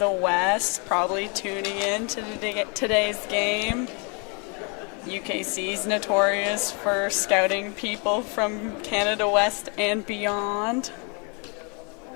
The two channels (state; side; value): quieter; right; 34.7 dB